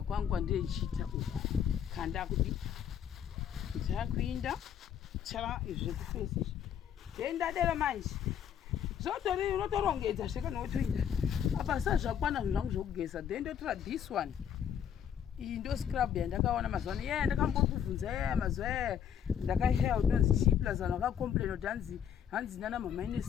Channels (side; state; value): right; quieter; 8.8 dB